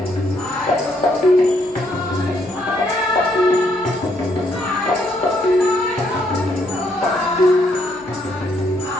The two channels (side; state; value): both; normal; correlation 0.72